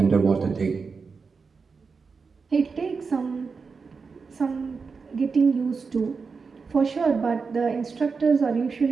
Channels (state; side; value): quieter; left; 5.0 dB